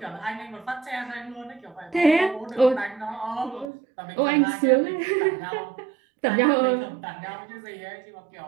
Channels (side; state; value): left; drops out; at 3.7 s